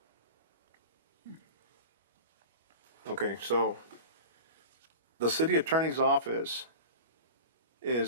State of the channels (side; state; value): both; inverted; correlation -0.33